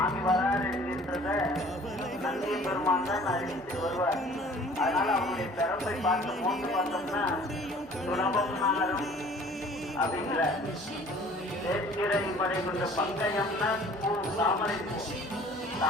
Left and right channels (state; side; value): normal; both; correlation 0.50